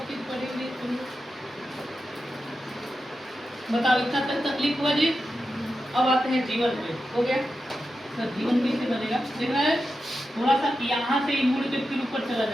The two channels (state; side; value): normal; both; correlation 0.90